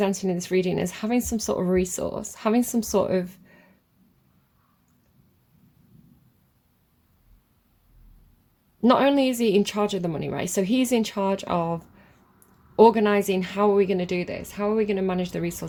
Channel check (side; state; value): both; identical; correlation 1.00